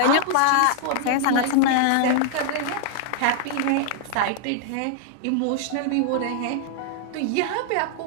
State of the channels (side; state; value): both; different; correlation -0.01